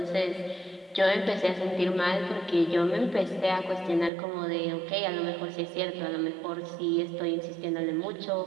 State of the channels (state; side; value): drops out; left; at 4.1 s